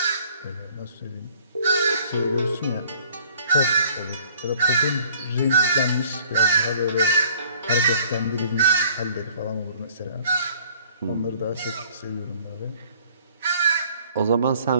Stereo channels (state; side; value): inverted; both; correlation -0.55